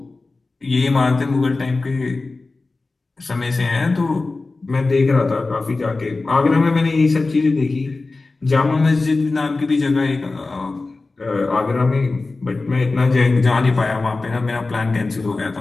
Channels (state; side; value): quieter; right; 3.5 dB